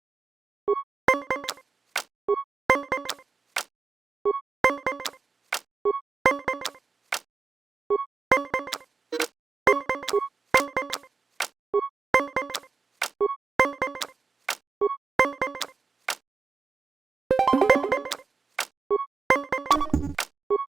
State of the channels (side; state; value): left; quieter; 4.6 dB